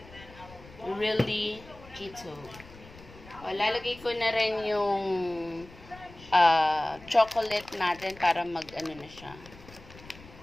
really keto. Lalagay ko na rin yung chocolate natin para mag-ano na siya.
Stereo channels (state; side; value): noise; left; rumble, 20 dB below the sound